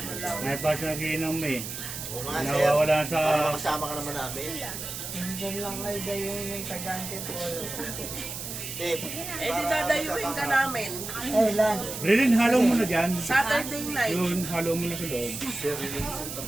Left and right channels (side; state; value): right; noise; hiss, 7 dB below the sound